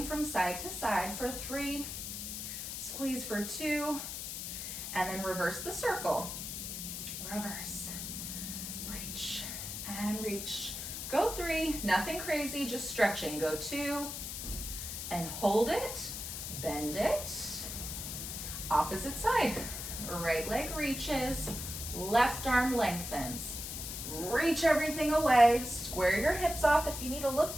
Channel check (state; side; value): noise; left; hiss, 6 dB below the sound